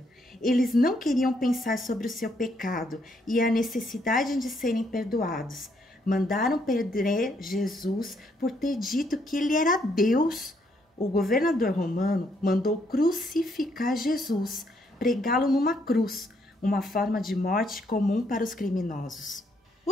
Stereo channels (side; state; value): both; normal; correlation 0.72